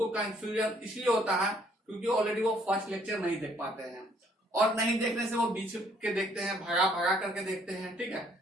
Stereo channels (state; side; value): normal; both; correlation 0.64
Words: कंफ्यूजन इसलिए होता है क्योंकि ऑलरेडी वो फर्स्ट लेक्चर नहीं देख पाते हैं, और नहीं देखने से वो बीच के देखते हैं, भगा भगा करके देखते हैं। ठीक है,